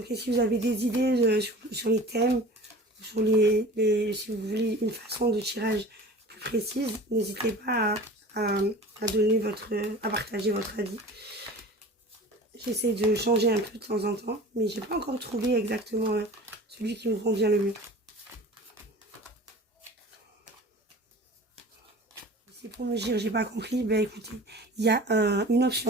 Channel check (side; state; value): both; normal; correlation 0.39